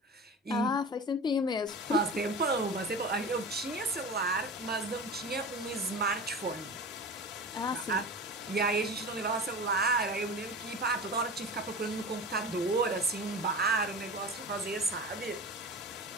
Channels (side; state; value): both; normal; correlation 0.32